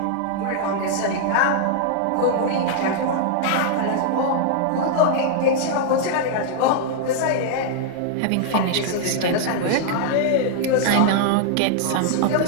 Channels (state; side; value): different; both; correlation -0.01